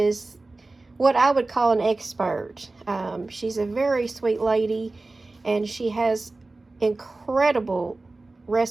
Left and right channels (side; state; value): left; quieter; 3.3 dB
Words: what I would call an expert. She's a very sweet lady, and she has incredible